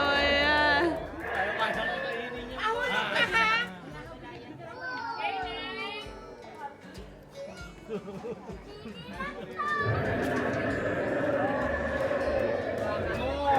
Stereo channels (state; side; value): identical; both; correlation 1.00